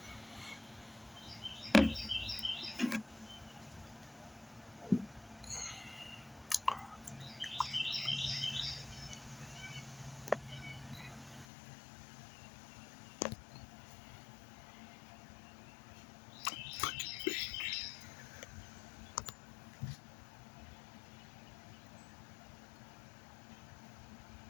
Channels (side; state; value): right; drops out; at 11.5 s